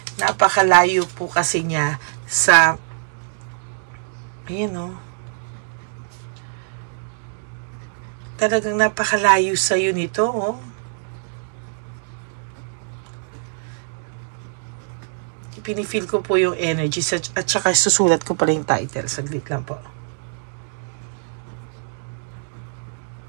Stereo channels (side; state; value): left; silent; digital silence